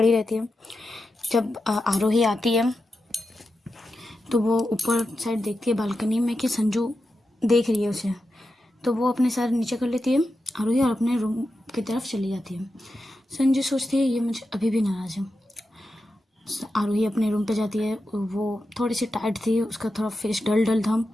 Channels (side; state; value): both; normal; correlation 0.89